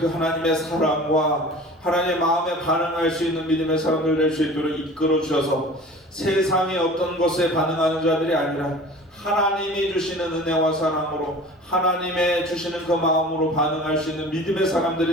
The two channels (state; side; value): normal; both; correlation 0.41